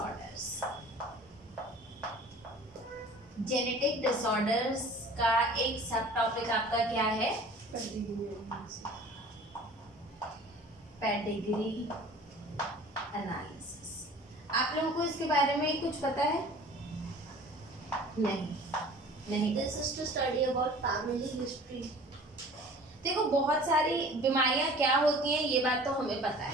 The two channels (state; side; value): normal; both; correlation 0.46